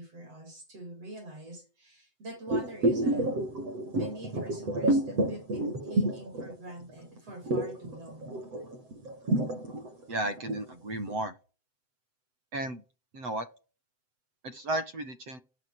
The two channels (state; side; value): late; left; 7.9 ms